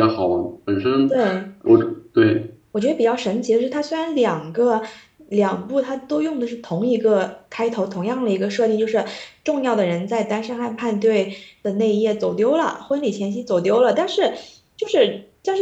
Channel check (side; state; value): both; identical; correlation 1.00